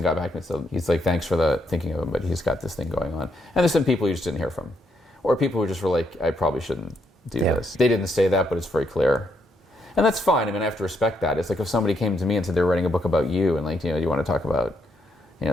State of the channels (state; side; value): normal; both; correlation 0.76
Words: got back and said, he's like, thanks for the thinking of him, but he's got this thing going on. And there's some people you just didn't hear from. Or people who just were like, I probably shouldn't do this. They didn't say that, but it's very clear. And that's fine. I mean, I have to respect that. It's like if somebody came to me and said they were writing a book about you, and like, you know, you want to talk about, you know,